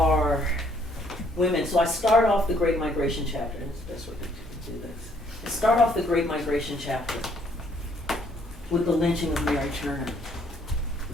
women. So I start off the Great Migration chapter. That's the best way to do this. I start off the Great Migration chapter with the lynching of Mary Turner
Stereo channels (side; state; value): both; normal; correlation 0.65